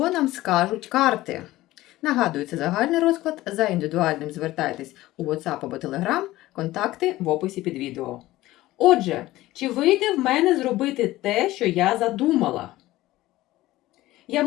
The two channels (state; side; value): quieter; right; 16.9 dB